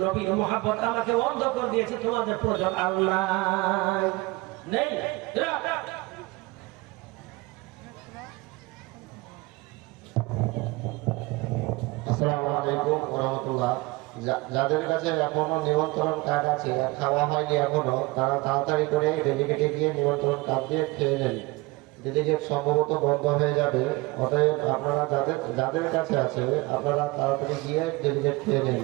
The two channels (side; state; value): left; quieter; 22.8 dB